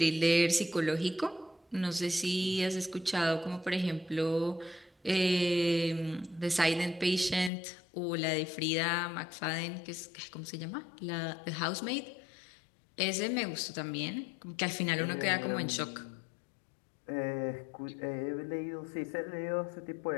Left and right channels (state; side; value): drops out; right; at 7.5 s